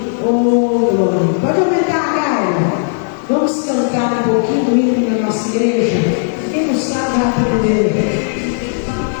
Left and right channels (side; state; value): right; silent; digital silence